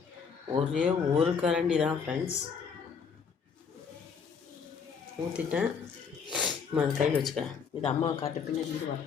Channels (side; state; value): right; quieter; 6.2 dB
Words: ஒரே ஒரு கரண்டி தான் ஃப்ரெண்ட்ஸ் ஊற்றிட்டேன். அதை கையில் வச்சுக்கிறேன். இது அம்மாவை காட்டு, பின்னாடி இது வர